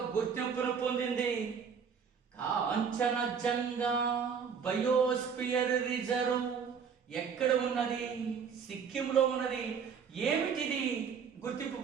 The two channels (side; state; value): left; quieter; 6.6 dB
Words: గుర్తింపును పొందింది. కాంచనజంగా బయోస్పియర్ రిజర్వ్ ఎక్కడ ఉన్నది? సిక్కింలో ఉన్నది. ఏమిటిది గుర్తింపు